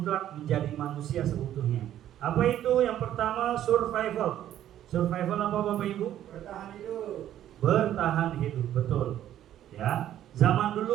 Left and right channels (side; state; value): left; quieter; 11.7 dB